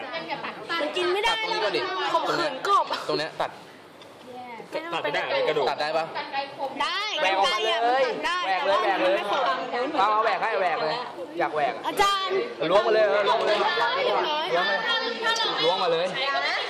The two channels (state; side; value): identical; both; correlation 1.00